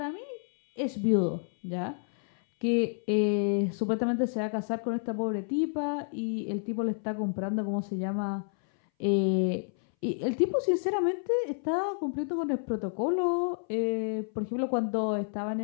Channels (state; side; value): silent; right; 58 dB below the other